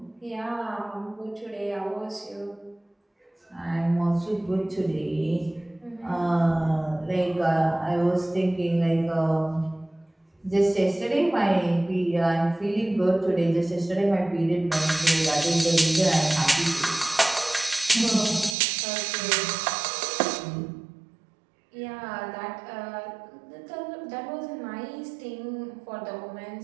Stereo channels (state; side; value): drops out; left; at 18.6 s